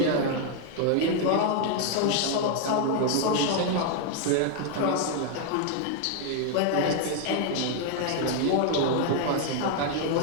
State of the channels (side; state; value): both; different; correlation 0.00